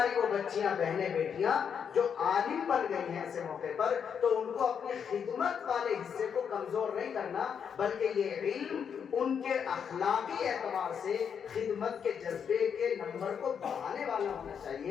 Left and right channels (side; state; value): right; quieter; 7.3 dB